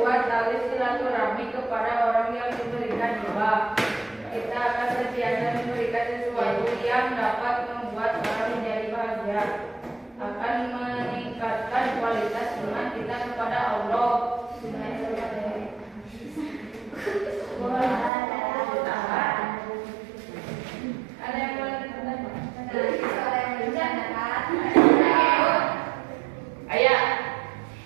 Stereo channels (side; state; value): left; drops out; at 18.1 s